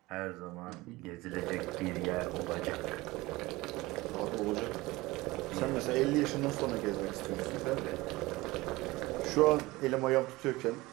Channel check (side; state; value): left; quieter; 20.6 dB